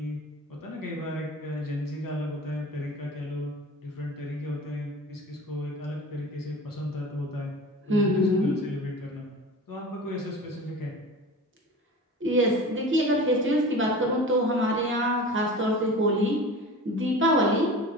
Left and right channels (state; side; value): normal; both; correlation 0.36